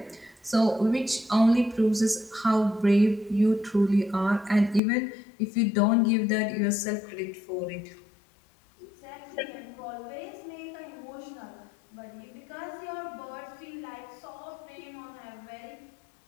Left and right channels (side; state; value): right; drops out; at 4.8 s